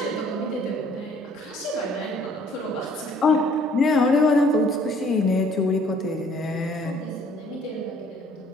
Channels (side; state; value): both; normal; correlation 0.58